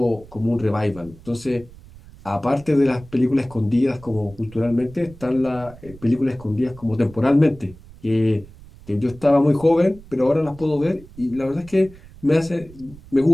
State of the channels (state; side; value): noise; right; rumble, 20 dB below the sound